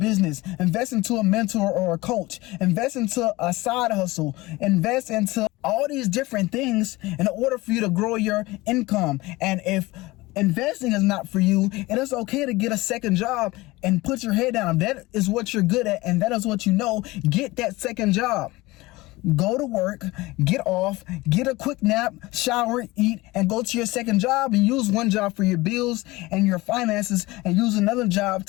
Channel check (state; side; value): quieter; right; 20.7 dB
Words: invest into a mentor or a coach, invest into a side hustle, invest into all these different things in order for you to grow your income. And if investing is not for you, it is okay to get a second job and put your head down. If that is what you're good at and that is what you know, get that second job. Go to work, get off, get a quick nap, shower, eat, and go to your second job and use one job for your bills and your finances and use another job